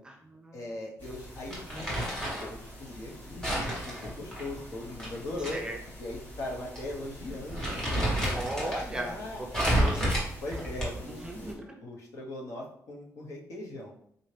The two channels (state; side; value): normal; both; correlation 0.73